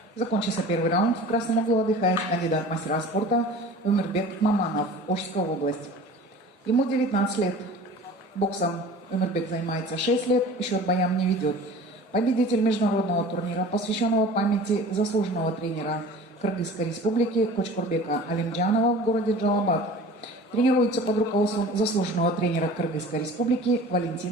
Закончился первый раунд. В красном углу отдыхает кандидат мастера спорта Өмірбек Маманов, Ошская область. Ему 19 лет. Боксом Өмірбек занимается 6 лет, счет боям не ведет. Победитель международного турнира, посвященного памяти заслуженного тренера Кыргызской республики Кочкурбека Алимджанова в городе Джалабад. Тренируется под руководством заслуженного тренера Кыргызской республики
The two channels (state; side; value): normal; both; correlation 0.41